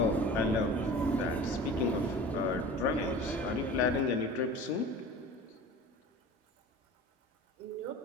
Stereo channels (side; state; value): both; normal; correlation 0.39